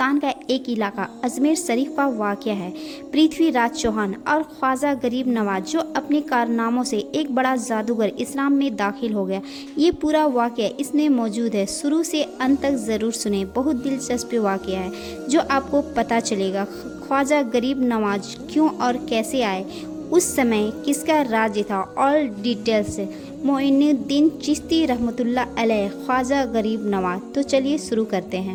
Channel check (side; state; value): both; identical; correlation 1.00